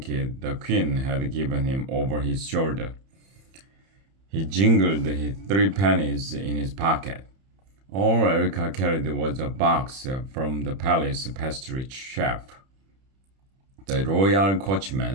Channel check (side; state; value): left; late; 31 ms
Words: the queen had given him over his shoulder. He jingled his 3 pennies in his pocket. All Erica carried was a box from the palace pastry chef. The royal